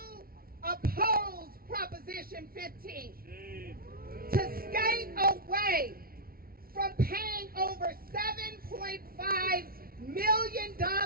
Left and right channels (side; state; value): left; late; 0.43 ms